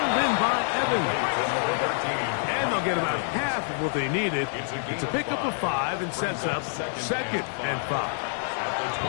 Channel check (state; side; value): silent; right; digital silence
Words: in by Evans. And they'll get about half of what they needed. It's a pickup of 5 and sets up 2nd and 5.